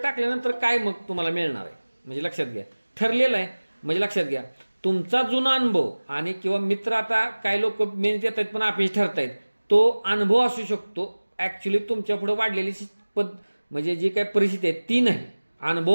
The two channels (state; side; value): inverted; both; correlation -1.00